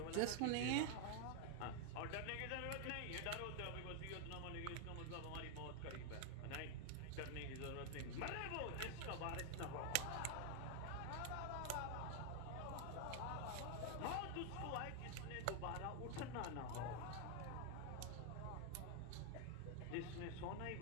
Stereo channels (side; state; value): both; different; correlation 0.00